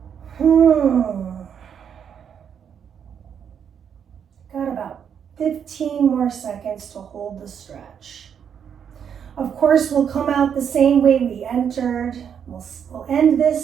Got about 15 more seconds to hold the stretch. Of course, we'll come out the same way we entered. We'll end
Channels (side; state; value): left; quieter; 7.9 dB